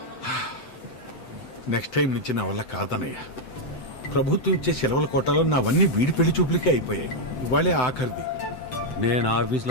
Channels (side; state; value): right; late; 7.8 ms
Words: నెక్స్ట్ టైం నుంచి నా వల్ల కాదనయ్య. ప్రభుత్వం ఇచ్చే సెలవుల కోటాలో నావన్నీ వీడి పెళ్లి చూపులకే అయిపోయాయి. ఇవాళే ఆఖరిది. నేను